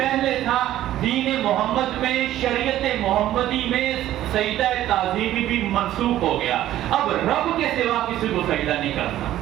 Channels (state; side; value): quieter; left; 13.3 dB